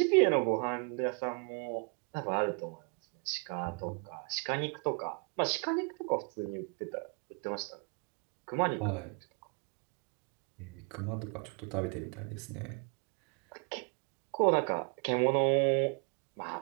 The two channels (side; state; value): left; quieter; 39.5 dB